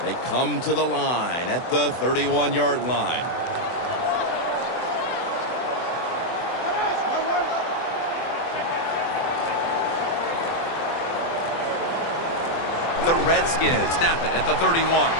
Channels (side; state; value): right; late; 24 ms